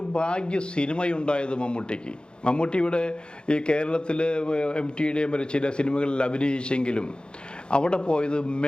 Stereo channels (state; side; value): late; right; 0.050 ms